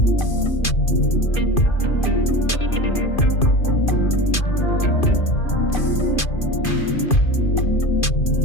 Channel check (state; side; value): late; right; 2.5 ms